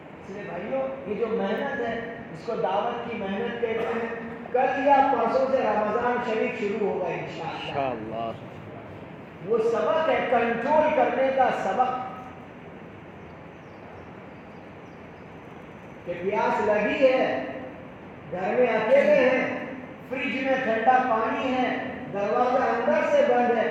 اس لیے بھائیوں یہ جو محنت ہے اس کو دعوت کی محنت کہتے ہیں۔ کل یا پرسوں سے رمضان شریف شروع ہوگا انشاءاللہ۔ وہ سبق ہے کنٹرول کرنے کا سبق، کہ پیاس لگی ہے، گھر میں اکیلے ہیں، فریج میں ٹھنڈا پانی ہے، دروازہ اندر سے بند ہے،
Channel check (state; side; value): identical; both; correlation 1.00